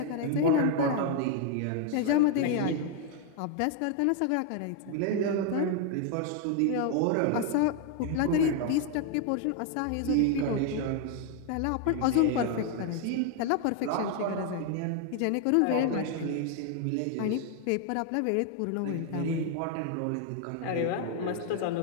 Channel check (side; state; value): both; different; correlation 0.00